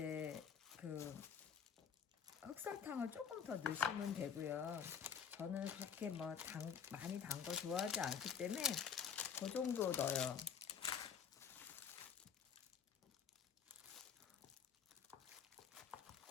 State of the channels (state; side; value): quieter; right; 7.4 dB